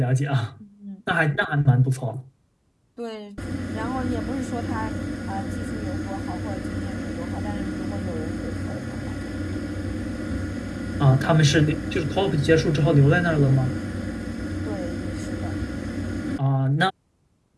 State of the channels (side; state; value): both; identical; correlation 1.00